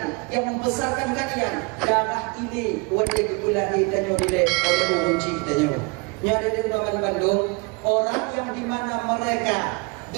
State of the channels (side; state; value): left; quieter; 29.7 dB